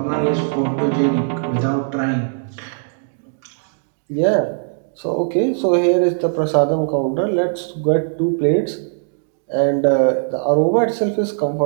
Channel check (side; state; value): left; silent; digital silence